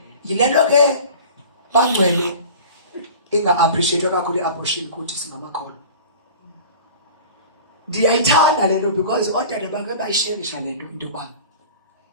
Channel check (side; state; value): both; inverted; correlation -0.40